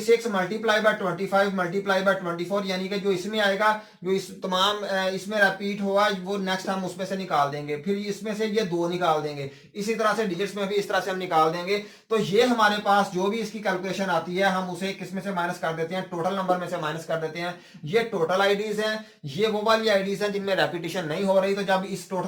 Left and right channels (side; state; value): both; identical; correlation 1.00